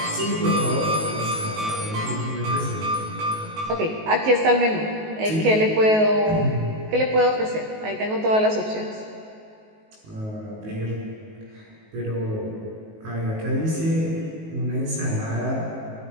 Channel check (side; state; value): left; late; 19 ms